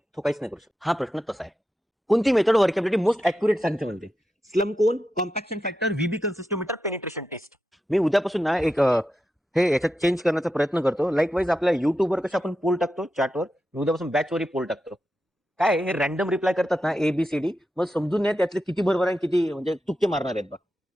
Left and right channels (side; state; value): both; normal; correlation 0.89